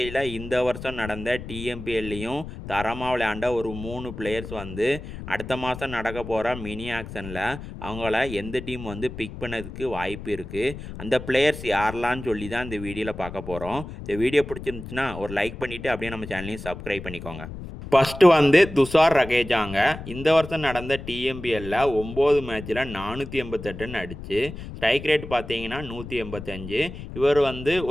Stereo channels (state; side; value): noise; left; rumble, 11 dB below the sound